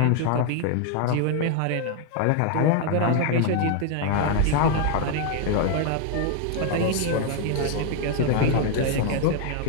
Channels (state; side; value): different; both; correlation 0.01